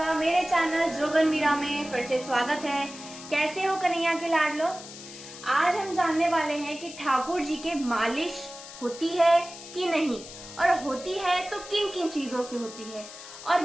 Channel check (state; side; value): noise; left; hiss, 14 dB below the sound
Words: मेरे चैनल जोगन मीरा में फिर से स्वागत है। कैसे हो कन्हैया के लाडलो। आज हम जानने वाले हैं कि ठाकुर जी के मालिश होती है कि नहीं, और होती है तो किन किन चीजों से होती है, और